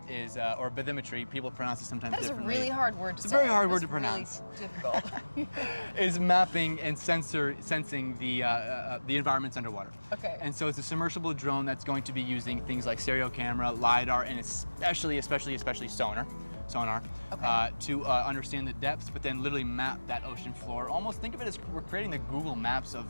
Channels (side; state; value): both; inverted; correlation -1.00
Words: is, or bathymetry, people pronounce it sometimes differently. That's a really hard word to say. It's a very hard word to pronounce. Really difficult. Is mapping and sensing the environments underwater. Okay. And so it's a submersible drone that's going to be using things like stereo camera, LiDAR, and especially sonar. Okay. To understand the depths, but then literally map that ocean floor. Almost think of it as we're creating the Google Maps